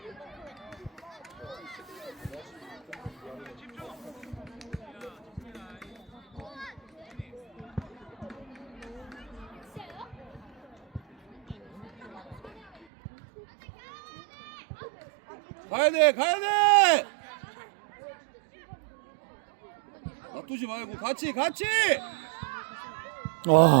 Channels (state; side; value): drops out; left; at 12.9 s